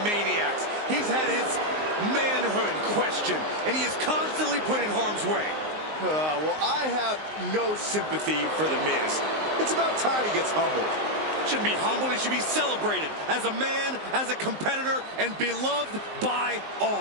maniacs. He's had his manhood questioned, and he is constantly put in harm's way. Well, I have no sympathy for The Miz. It's about time he gets humbled. Shouldn't be humbled, he should be celebrated as a man, as a competitor, and beloved by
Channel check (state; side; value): late; left; 19 ms